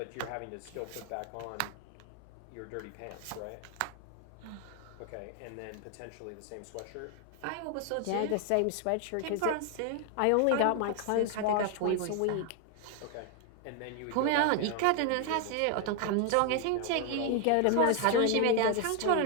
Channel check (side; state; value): both; different; correlation 0.01